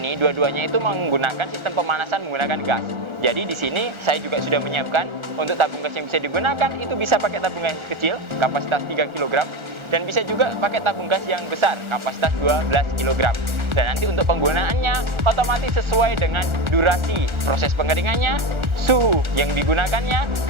dua-duanya itu menggunakan sistem pemanasan menggunakan gas. Jadi di sini saya juga sudah menyiapkan untuk tabung gas yang bisa digunakan itu bisa pakai tabung gas kecil kapasitas 3 kg dan bisa juga pakai tabung gas yang besar kapasitas 12 kg. Dan nanti untuk penggunaannya otomatis sesuai dengan durasi proses pengeringannya, suhu yang digunakannya,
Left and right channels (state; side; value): late; left; 1.4 ms